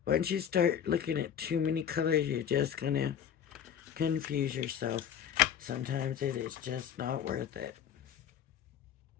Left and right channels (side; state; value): right; quieter; 8.9 dB